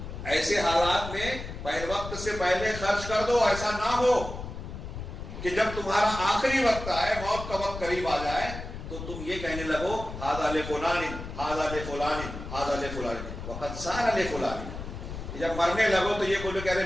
ایسے حالات میں پہلے وقت سے پہلے خرچ کر دو. ایسا نہ ہو کہ جب تمہارا آخری وقت آئے، موت کا وقت قریب آ جائے تو تم یہ کہنے لگو ھذا لفلان ھذا لفلان ھذا لفلان وقد صار لفلان. جب مرنے لگو تو یہ بولو کہ ارے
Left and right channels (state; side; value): noise; left; rumble, 9 dB below the sound